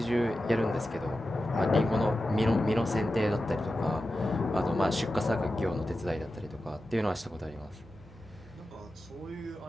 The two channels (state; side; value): normal; both; correlation 0.92